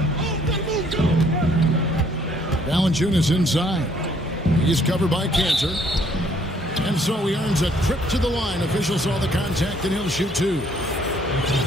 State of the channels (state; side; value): normal; both; correlation 0.64